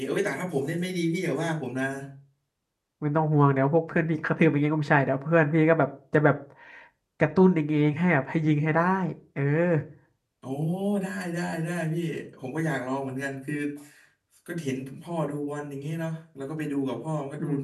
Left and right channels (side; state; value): both; identical; correlation 1.00